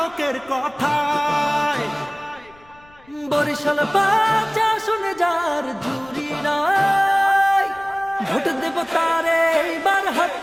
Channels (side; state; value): left; noise; rumble, 28 dB below the sound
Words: কথায়। বরিশাল বাচ্চা শুনে যার জুড়ি নাই, ভোট দেব তারে এইবার হাত